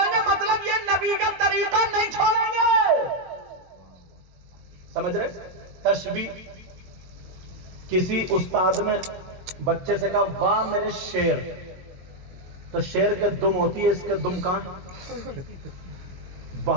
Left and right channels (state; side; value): late; left; 22 ms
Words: گے مطلب یہ نبی کا طریقہ نہیں چھوڑیں گے. سمجھ رہے؟ تشبیہ. کسی استاد نے بچے سے کہا واہ میرے شیر، تو شیر کے دم ہوتی ہے، اس کے دم کہاں؟